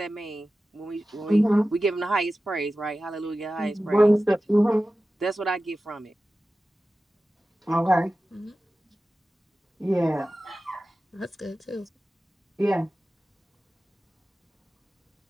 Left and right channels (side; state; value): both; normal; correlation 0.95